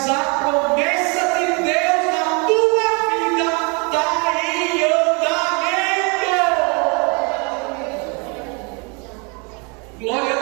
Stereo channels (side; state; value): left; quieter; 32.5 dB